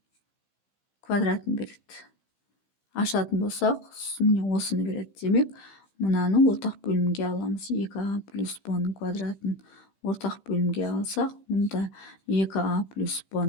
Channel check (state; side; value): late; right; 15 ms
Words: квадратын береді. Ашатын болсақ, міне осыны береді. Демек, мынаны ортақ бөлімге аламыз. 2а плюс б-ның квадратын ортақ бөлімге алсақ, мұнда 2а плюс